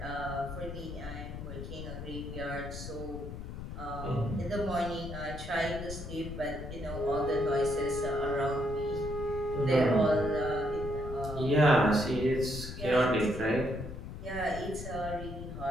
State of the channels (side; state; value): left; noise; rumble, 9 dB below the sound